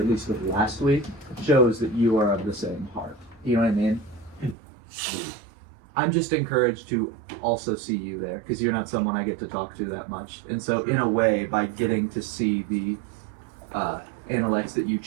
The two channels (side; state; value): left; drops out; at 4.5 s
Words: least with last week, shows that you are of the same heart. You know what I mean? I'm just encouraged to also see you there, because you're not someone I get to talk to that much. And so in a way, by getting to see the analects that you